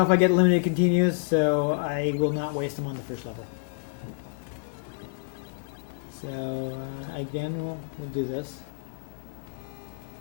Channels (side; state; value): right; silent; digital silence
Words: if I get limited continues, so I will not waste them on the first level. So again, we'll do this.